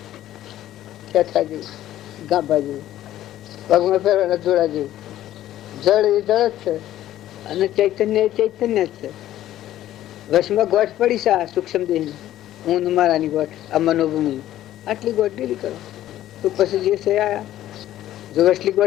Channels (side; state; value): right; quieter; 13.2 dB